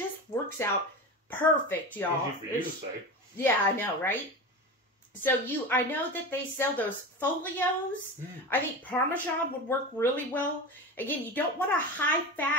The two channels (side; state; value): both; normal; correlation 0.26